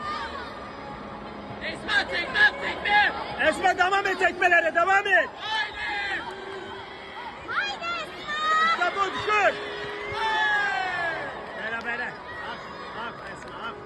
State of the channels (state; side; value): identical; both; correlation 1.00